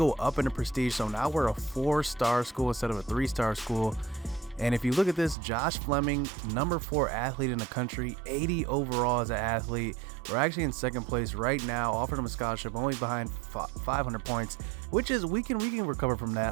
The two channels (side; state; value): left; drops out; at 5.4 s